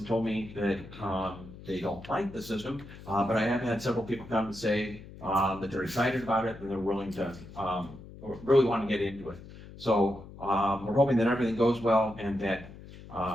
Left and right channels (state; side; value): noise; left; hum, 16 dB below the sound